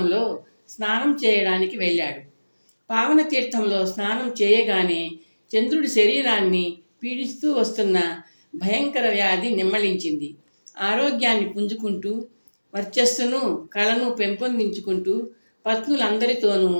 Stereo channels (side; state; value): both; inverted; correlation -1.00